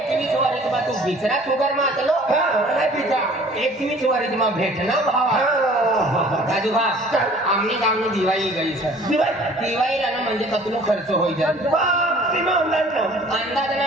21 वरिस मा तू बिचरा शुगर मातलो नाही बिचा 21 वरिस मा भेटना भावा राजू भाऊ आमनी गावनी दिवाळी गई सर दिवाळीला ना म्हणजे कतलो खर्च होई जाय अंदाज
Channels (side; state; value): both; normal; correlation 0.51